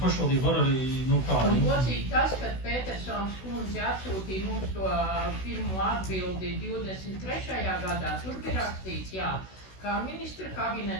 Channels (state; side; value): late; right; 16 ms